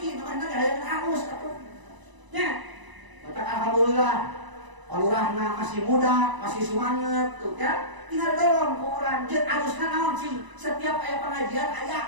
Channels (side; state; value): left; late; 1.0 ms